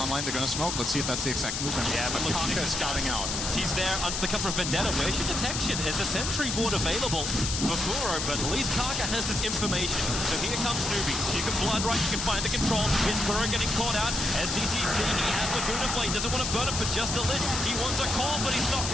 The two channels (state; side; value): noise; left; hiss, 2 dB below the sound